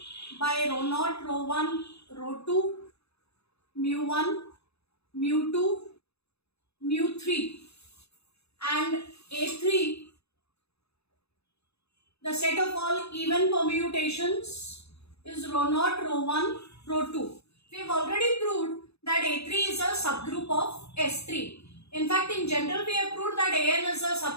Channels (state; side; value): late; right; 0.79 ms